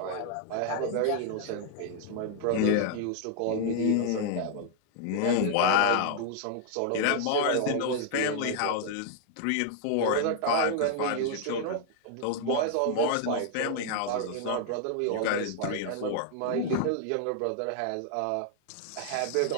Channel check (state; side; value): different; both; correlation -0.01